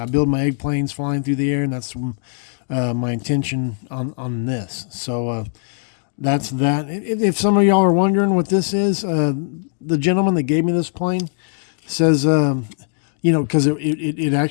build my egg planes flying through the air, and that's my intention on this. So that's that. If some of y'all are wondering what this is, the gentleman that gave me this plane says, because it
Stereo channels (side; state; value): right; silent; digital silence